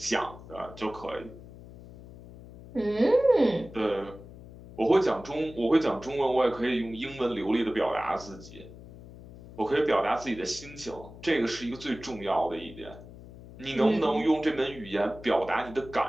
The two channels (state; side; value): noise; left; hum, 17 dB below the sound